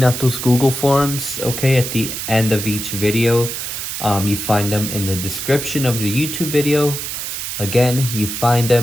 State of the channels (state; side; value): noise; right; hiss, 5 dB below the sound